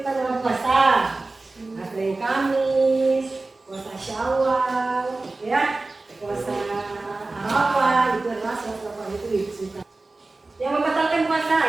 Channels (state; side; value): quieter; left; 3.3 dB